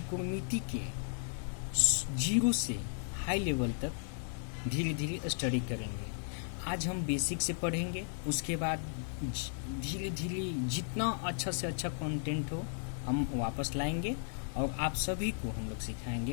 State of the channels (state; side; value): silent; right; 54 dB below the other